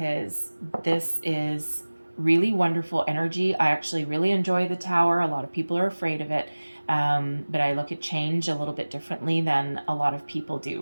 this is really wonderful energy. I actually really enjoy the Tower. A lot of people are afraid of it. But I look at change a little bit differently than a lot of people do,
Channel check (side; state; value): both; inverted; correlation -1.00